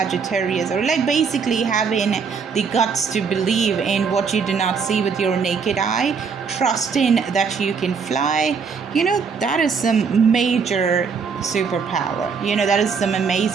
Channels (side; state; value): left; quieter; 5.7 dB